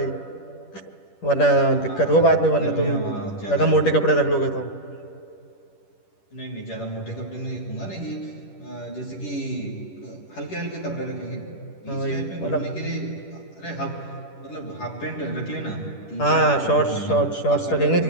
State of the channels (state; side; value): late; right; 10 ms